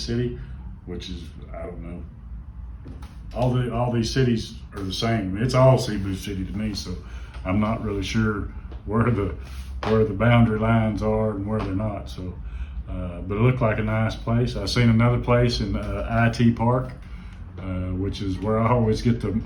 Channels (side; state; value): both; identical; correlation 1.00